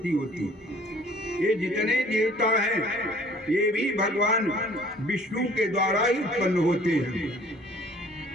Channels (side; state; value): both; normal; correlation 0.53